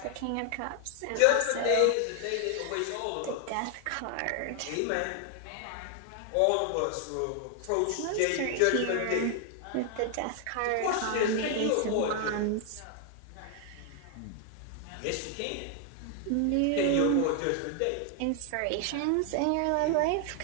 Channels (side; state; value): both; different; correlation 0.00